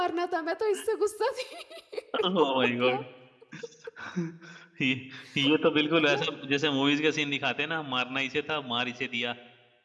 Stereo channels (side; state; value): both; identical; correlation 1.00